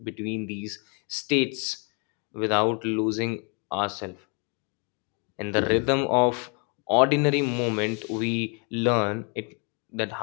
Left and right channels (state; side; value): quieter; right; 36.0 dB